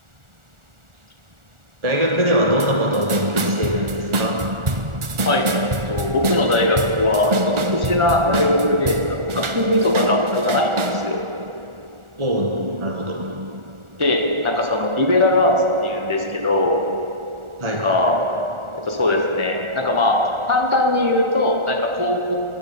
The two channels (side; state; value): left; late; 1.4 ms